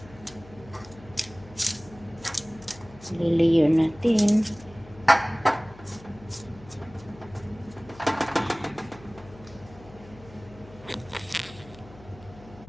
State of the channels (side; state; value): left; noise; hum, 20 dB below the sound